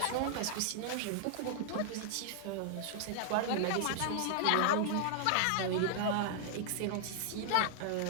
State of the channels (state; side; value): different; both; correlation -0.01